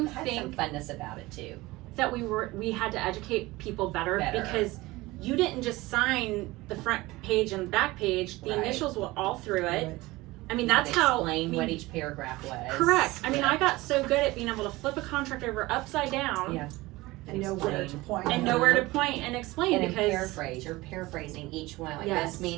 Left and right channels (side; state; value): left; quieter; 20.2 dB